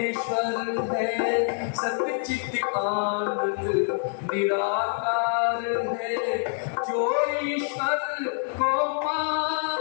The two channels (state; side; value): silent; right; 58 dB below the other